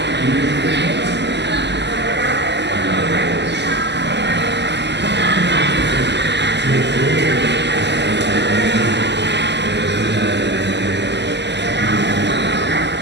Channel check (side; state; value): left; late; 0.50 ms